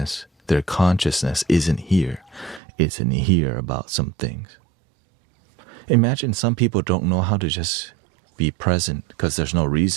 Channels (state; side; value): drops out; left; at 2.6 s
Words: their consciousness isn't here. It's in here about some things. Imagine some people don't know how to just be present because there's no